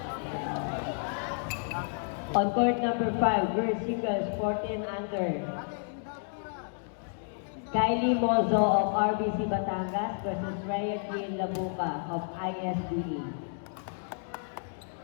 On court number 5, girls singles, 14 under, Kylie Mozo of RBC Batangas versus Rhea Jean Labuca of ISDE.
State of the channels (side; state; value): right; silent; digital silence